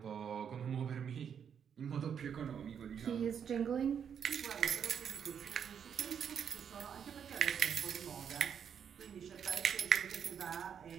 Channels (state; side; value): quieter; left; 7.8 dB